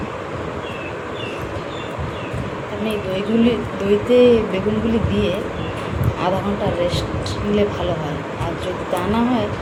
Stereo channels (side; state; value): both; identical; correlation 1.00